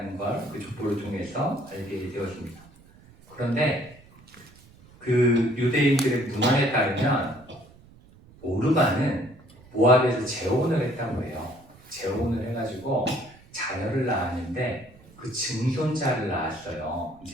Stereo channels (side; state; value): right; noise; rumble, 25 dB below the sound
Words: 걸 그 족보를 통해서 알게 되었습니다. 그런데 그 유대인들의 문헌에 따르면 오르바는 모압에서 재혼을 했다고 해요. 재혼을 해가지고 자녀를 낳았는데 그 증손자를 낳았어요.